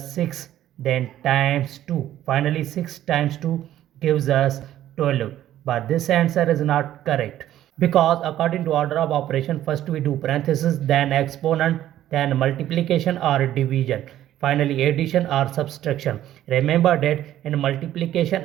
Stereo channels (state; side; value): quieter; left; 12.6 dB